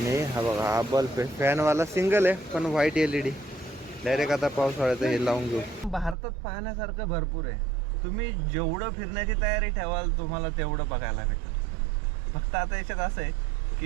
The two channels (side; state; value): left; drops out; at 6.2 s